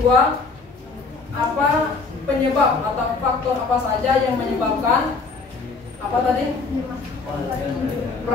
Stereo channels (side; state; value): right; quieter; 4.3 dB